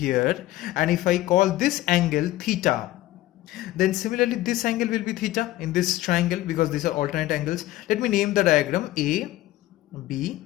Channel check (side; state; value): right; quieter; 16.0 dB